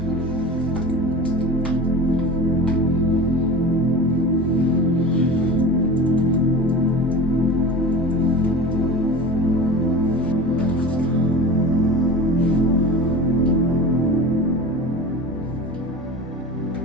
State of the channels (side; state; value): both; normal; correlation 0.33